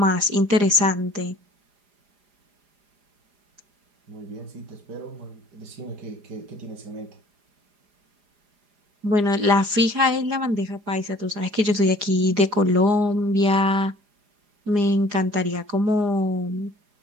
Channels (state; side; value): late; left; 4.9 ms